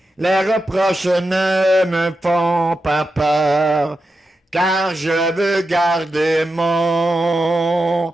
Les reproches ne me font pas peur, car je veux garder mon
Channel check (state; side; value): normal; both; correlation 0.89